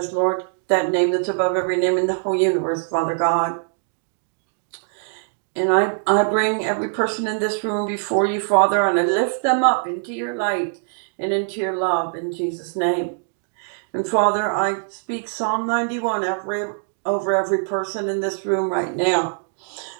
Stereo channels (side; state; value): left; silent; digital silence